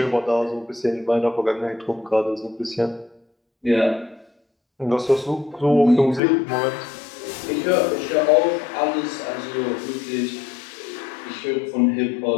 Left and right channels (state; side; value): drops out; right; at 6.2 s